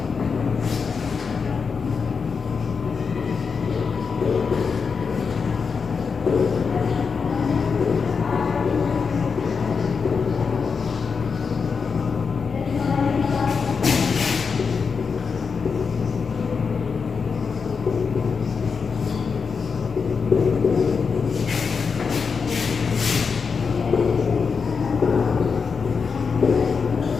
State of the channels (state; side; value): quieter; right; 5.5 dB